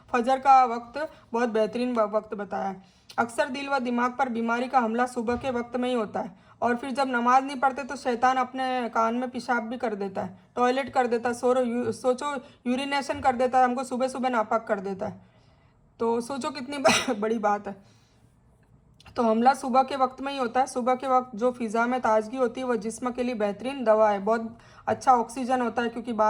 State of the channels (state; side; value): identical; both; correlation 1.00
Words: फजर का वक्त बहुत बेहतरीन वक्त बताया है। अक्सर दिल व दिमाग पर बीमारी का हमला सुबह के वक्त में ही होता है और फिर जब नमाज नहीं पढ़ते तो शैतान अपने कान में पेशाब भी कर देता है, टॉयलेट कर देता है, सोचो यूरिनेशन कर देता है, हमको सुबह सुबह नापाक कर देता है। तो सोचो कितनी बड़ी बात है। तो हमला सुबह के वक्त में ही होता है। सुबह के वक्त जो फ़िज़ा में ताजगी होती है वह जिस्म के लिए बेहतरीन दवा है, बहुत अच्छा ऑक्सीजन होता है, क्योंकि